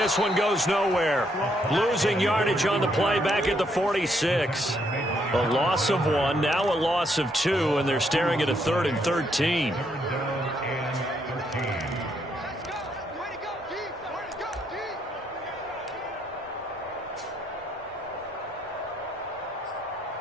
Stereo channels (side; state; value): both; normal; correlation 0.74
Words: one goes nowhere. Losing yardage on the play back at the 46. A loss of 1, now a loss of 2, and they're staring at a 3rd and 13.